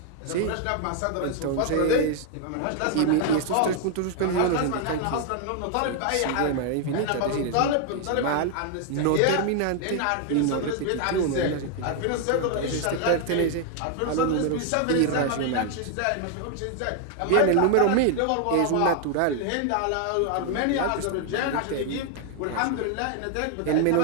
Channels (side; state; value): both; different; correlation 0.00